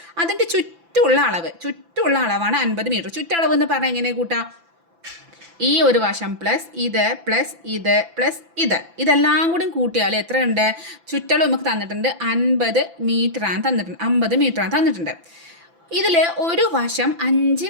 അതിൻ്റെ ചുറ്റുള്ള അളവാണ് 50 മീറ്റർ. ചുറ്റളവ് എന്ന് പറഞ്ഞാൽ എങ്ങനെ കൂട്ടാം? ഈ ഒരു വശം പ്ലസ് ഇത് ഇതെല്ലാം കൂടി കൂട്ടിയാൽ എത്ര ഉണ്ട്? ചുറ്റളവ് നമുക്ക് തന്നിട്ടുണ്ട് 50 മീറ്ററാണ് തന്നിട്ടുണ്ട്. ഇതിൽ ഒരു വശം 5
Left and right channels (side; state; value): left; late; 5.9 ms